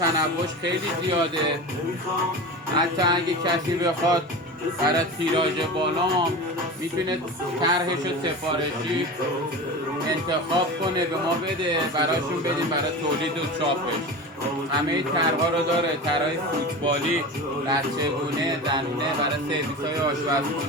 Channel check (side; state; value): both; normal; correlation 0.29